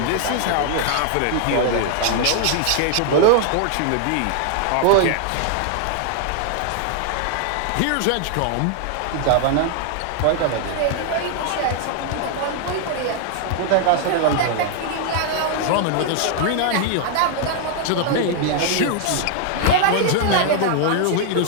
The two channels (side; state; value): both; different; correlation 0.00